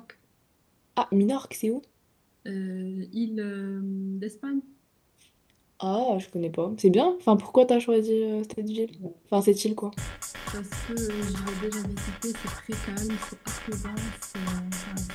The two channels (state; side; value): identical; both; correlation 1.00